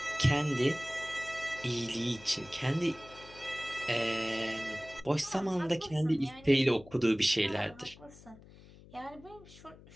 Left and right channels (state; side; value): noise; left; hum, 21 dB below the sound